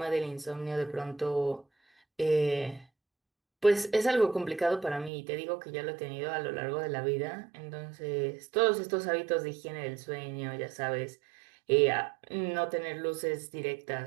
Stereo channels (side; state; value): left; drops out; at 5.1 s